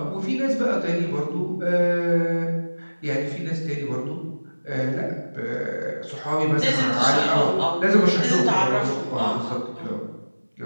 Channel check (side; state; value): both; inverted; correlation -1.00